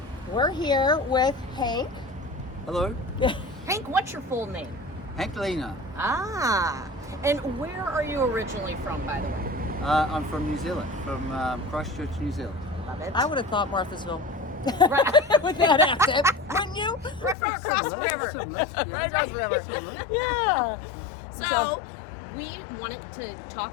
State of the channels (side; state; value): right; drops out; at 17.4 s